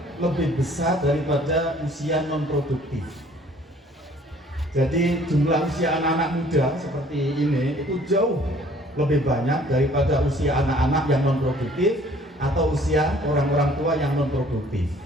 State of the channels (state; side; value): normal; both; correlation 0.56